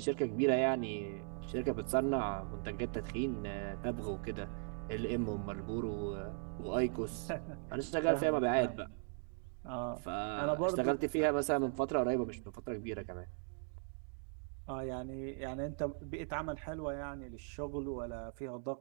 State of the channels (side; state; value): left; silent; 52 dB below the other